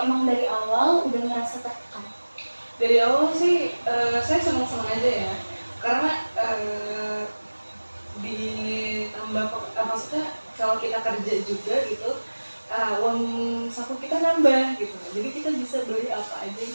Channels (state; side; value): inverted; both; correlation -1.00